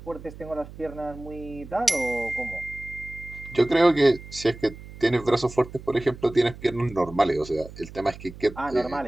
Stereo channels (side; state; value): right; noise; hum, 16 dB below the sound